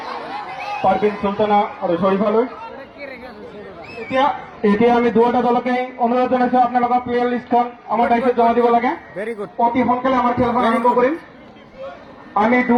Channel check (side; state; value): both; identical; correlation 1.00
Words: পারভিন সুলতানা আৰু শরীফালৈ। এতিয়া এতিয়া আমি দুয়োটা দলকে অনুৰোধ জনাইছো আপোনালোকৰ প্লেয়াৰ লিষ্টখন আমাৰ দায়িত্বত জমা দিব লাগে ভেৰি গুড। অতি সোনকালে আমাৰ খেলখন আৰম্ভ কৰিম আমি